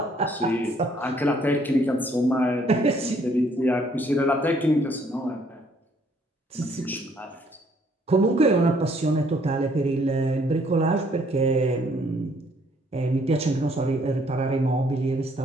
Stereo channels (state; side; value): normal; both; correlation 0.65